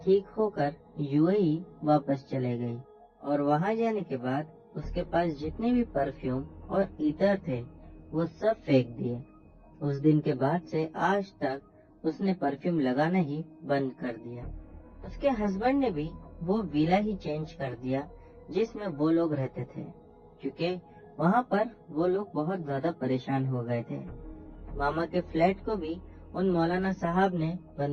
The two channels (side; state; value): both; identical; correlation 1.00